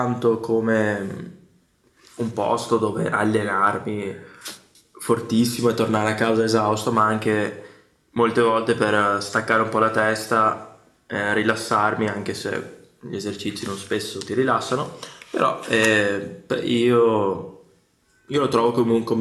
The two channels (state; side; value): identical; both; correlation 1.00